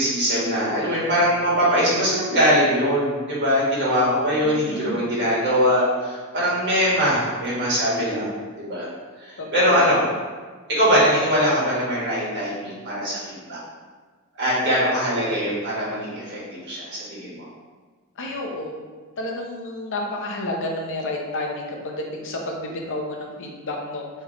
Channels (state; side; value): normal; both; correlation -0.07